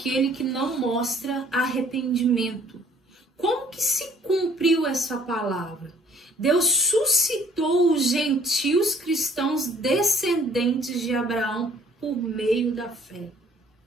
que não mostra arrependimento. Como que se cumpriu essa palavra? Deus suscitou os gentios cristãos descendentes de Abraão por meio da fé.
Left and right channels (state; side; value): normal; both; correlation 0.58